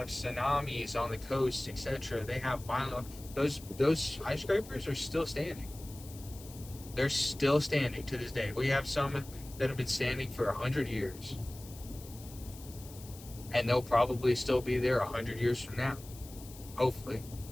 tsunamis on the coast, etc. They have violent, those skyscrapers are still standing. They're still standing to this day. We have some that have been standing for 100 years, and they'll probably still be there 100 years from now, hopefully.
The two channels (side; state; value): left; noise; hiss, 18 dB below the sound